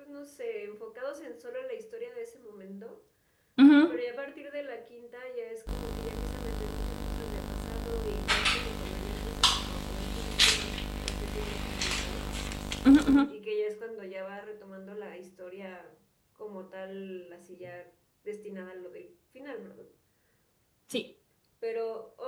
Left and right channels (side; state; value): both; identical; correlation 1.00